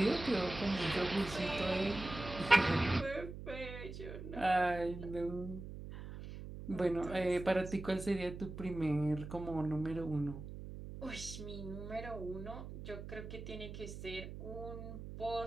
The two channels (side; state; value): right; noise; hum, 10 dB below the sound